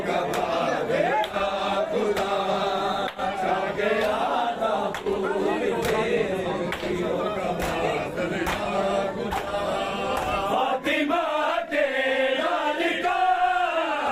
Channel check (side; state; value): both; identical; correlation 1.00